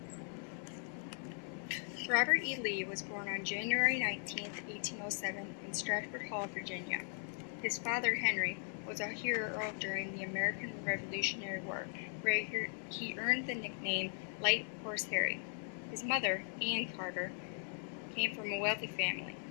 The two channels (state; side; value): silent; right; 52 dB below the other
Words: Robert E. Lee was born on January 19, 1807, in Stratford Hall, Virginia. His father, Henry, was a hero during the American Revolutionary War, where he earned the nickname Light Horse Harry. His mother, Anne Carter, came from a wealthy family.